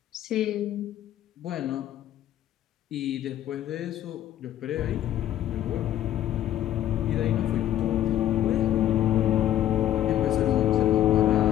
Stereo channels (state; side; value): quieter; right; 12.1 dB